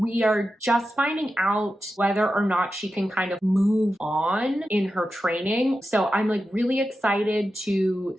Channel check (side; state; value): both; normal; correlation 0.91